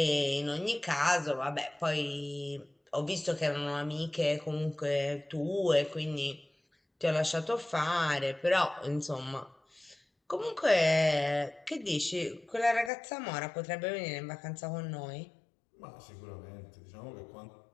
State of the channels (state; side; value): drops out; right; at 12.9 s